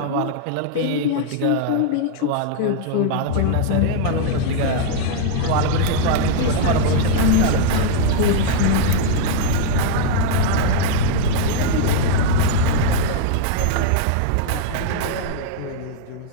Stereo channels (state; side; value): different; both; correlation -0.01